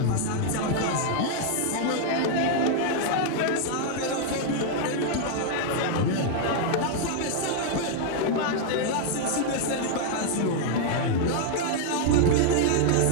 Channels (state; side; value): different; both; correlation 0.00